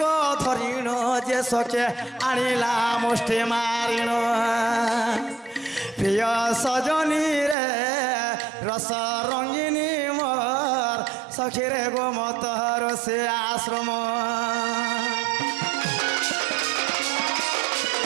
धरिण जे सके आनिला मुष्टि मारिण प्रिय सजनी रे रस रंगिनी मोर सखीरे गो मत ऋषि आश्रम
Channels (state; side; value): drops out; left; at 7.6 s